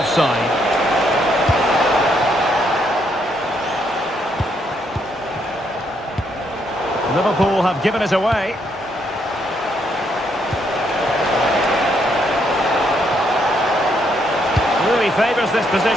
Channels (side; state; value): both; normal; correlation 0.74